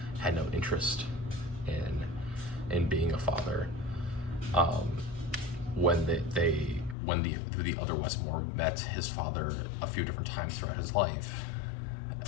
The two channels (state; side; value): drops out; right; at 7.0 s